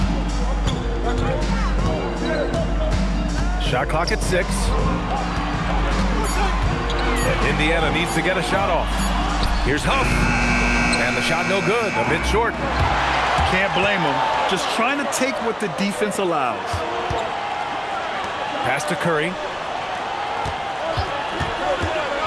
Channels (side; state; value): both; identical; correlation 1.00